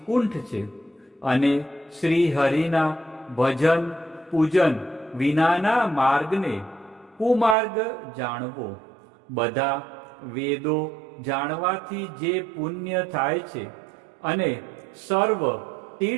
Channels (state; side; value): drops out; left; at 7.6 s